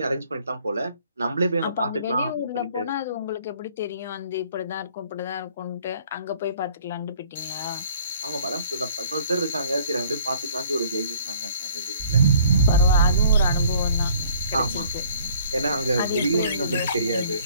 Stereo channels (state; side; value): inverted; both; correlation -0.56